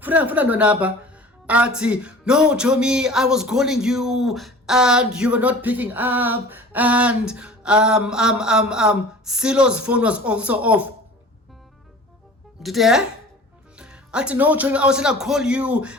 Ati, no, Chomi, I was calling you and you were not picking up, and Silo's phone was also off. Did you hear? Ati, no, Chomi, I was gonna call you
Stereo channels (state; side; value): normal; both; correlation 0.42